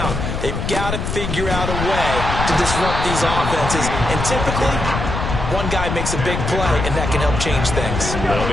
They've got to figure out a way to disrupt these offenses. And typically, one guy makes a big play, and that can help change things. They'll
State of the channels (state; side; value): noise; left; rumble, 3 dB below the sound